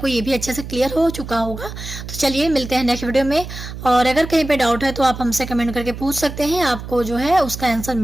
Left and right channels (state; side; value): noise; right; hum, 10 dB below the sound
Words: ये भी अच्छे से क्लियर हो चुका होगा। तो चलिए मिलते हैं नेक्स्ट वीडियो में, और अगर कहीं पे डाउट है तो आप हमसे कमेंट करके पूछ सकते हैं, आपको जो है उसका आंसर